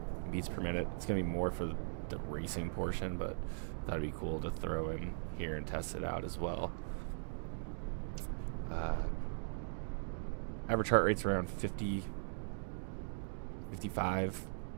beats per minute. It's going to be more for the racing portion, but that'd be cool to throw in here and test it out as well. Average heart rate's around 50, 55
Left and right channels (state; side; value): silent; left; digital silence